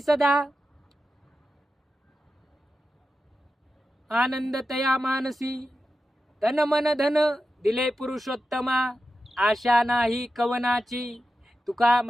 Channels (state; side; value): normal; both; correlation 0.91